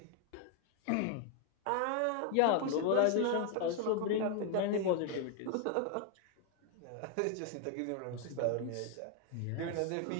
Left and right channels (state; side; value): different; both; correlation 0.00